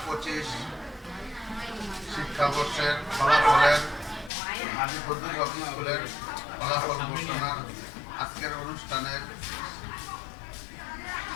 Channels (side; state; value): right; drops out; at 4.3 s